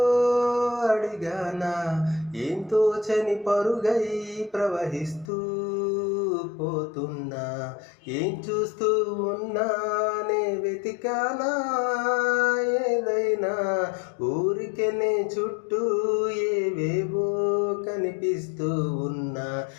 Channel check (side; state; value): right; drops out; at 5.3 s